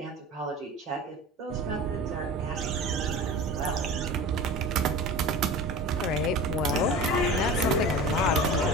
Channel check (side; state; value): both; normal; correlation 0.34